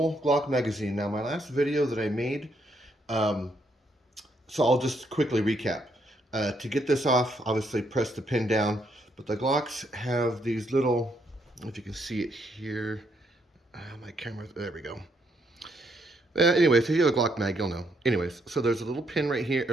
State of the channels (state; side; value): normal; both; correlation 0.74